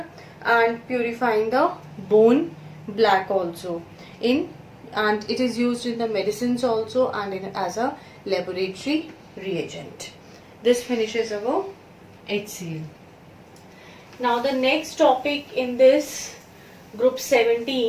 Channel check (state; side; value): identical; both; correlation 1.00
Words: And purifying the bone black also. And it is used in the medicines also and as a laboratory reagent. This finishes our HCl. Now the next topic in this group